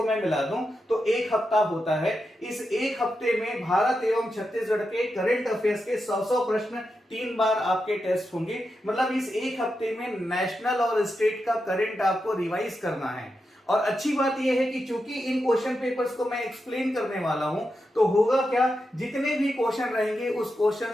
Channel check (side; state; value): both; normal; correlation 0.88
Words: मैं मिला दूं तो एक हफ्ता होता है। इस एक हफ्ते में भारत एवं छत्तीसगढ़ के करंट अफेयर्स के 100 प्रश्न 3 बार आपके टेस्ट होंगे। मतलब इस एक हफ्ते में नेशनल और स्टेट का करंट आपको रिवाइज करना है। और अच्छी बात यह है कि चूंकि इन क्वेश्चन पेपर्स को मैं एक्सप्लेन करने वाला हूं तो होगा क्या, जितने भी क्वेश्चन रहेंगे उस क्वेश्चन